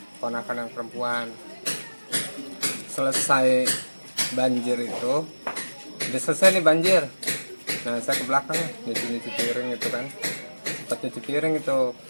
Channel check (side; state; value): both; inverted; correlation -1.00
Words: ponakan yang perempuan. Selesai banjir itu, udah selesai nih banjir. Nah, saya ke belakang nyuci piring itu kan. Sempat nyuci piring itu,